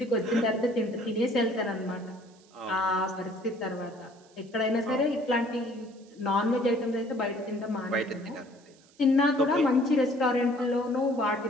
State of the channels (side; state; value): right; noise; hiss, 29 dB below the sound